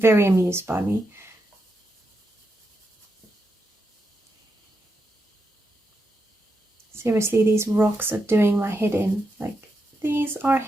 amused by me. Seriously, these rocks are doing my head in. Like, these are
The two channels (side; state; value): both; normal; correlation 0.85